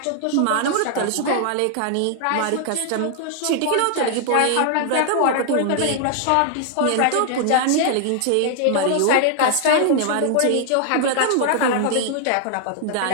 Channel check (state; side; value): different; both; correlation 0.00